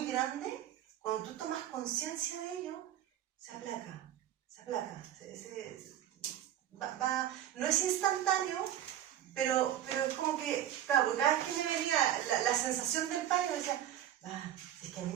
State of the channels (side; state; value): left; quieter; 11.5 dB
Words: grande, cuando tú tomas conciencia de ello, se aplaca. No es instantáneo, pero es como que, claro, cada vez que me venía la sensación del pánico, decía, es que a mí